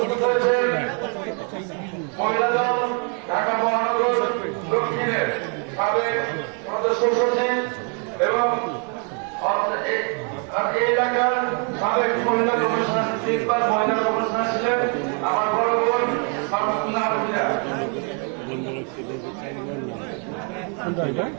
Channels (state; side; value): quieter; left; 39.4 dB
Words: হয়েছেন মহিলা দল ঢাকা মহানগর দক্ষিণের সাবেক সদস্য সচিব এবং এই এলাকার সাবেক মহিলা কমিশনার 3 বার মহিলা কমিশনার ছিলেন আমার বড় বোন